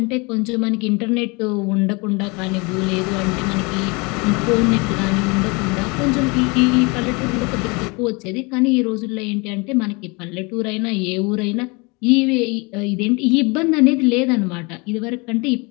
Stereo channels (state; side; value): quieter; right; 28.4 dB